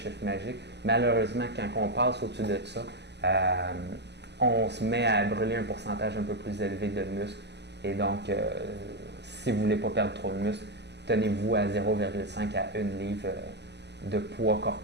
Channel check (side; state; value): left; late; 0.50 ms